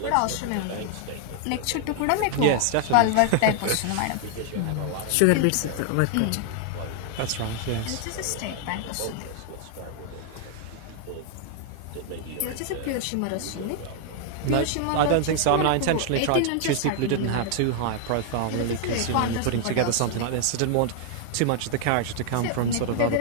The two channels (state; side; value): different; both; correlation 0.00